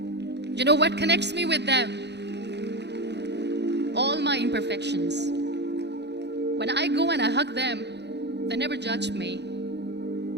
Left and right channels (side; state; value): left; late; 0.50 ms